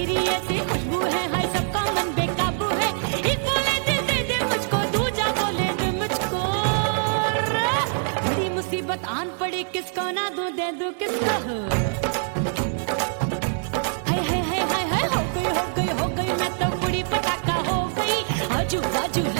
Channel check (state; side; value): silent; left; digital silence